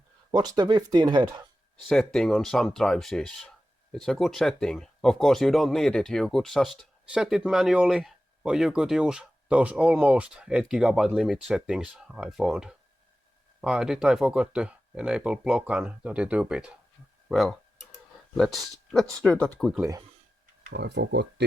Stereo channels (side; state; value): both; normal; correlation 0.94